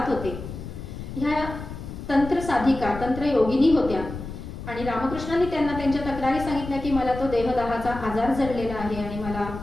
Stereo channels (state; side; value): noise; left; rumble, 9 dB below the sound